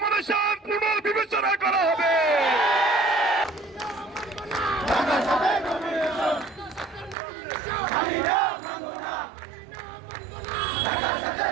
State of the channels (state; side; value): drops out; left; at 7.2 s